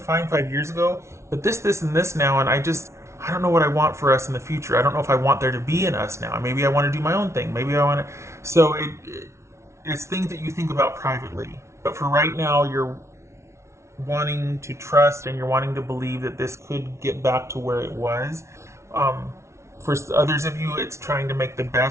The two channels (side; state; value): left; late; 0.13 ms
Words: fine 5 years ago, but this, and this now, and I don't know what I want for us in the future. I don't know if I want there to be an us now. Maybe I want to do my own thing. Maybe I want to. So it's things that you think about privately. But for right now, you're wanting to trust and you're wanting to believe that this could get back to where it was. For others of you, it's trying to make the